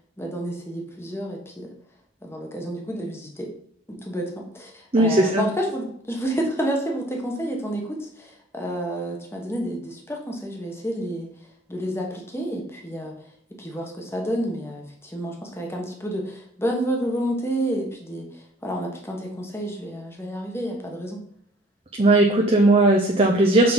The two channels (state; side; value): normal; both; correlation 0.55